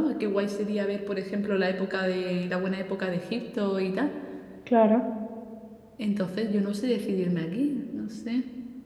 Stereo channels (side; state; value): both; identical; correlation 1.00